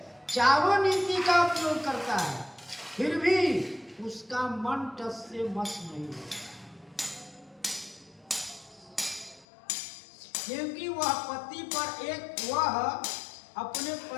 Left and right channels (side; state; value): right; drops out; at 9.5 s